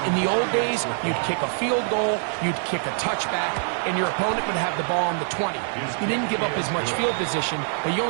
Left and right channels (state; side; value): silent; left; 55 dB below the other